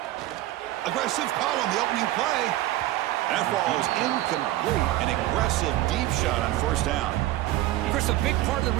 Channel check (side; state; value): left; quieter; 15.6 dB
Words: Aggressive call on the opening play. That falls incomplete. An aggressive deep shot on first down. Chris, a big part of the